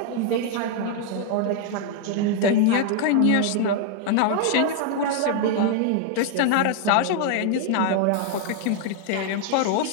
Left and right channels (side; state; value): both; different; correlation 0.00